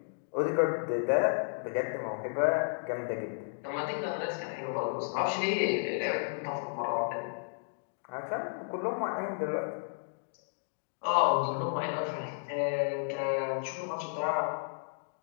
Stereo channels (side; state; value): right; silent; digital silence